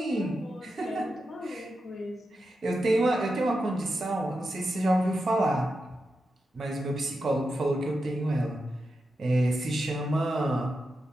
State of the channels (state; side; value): normal; both; correlation 0.89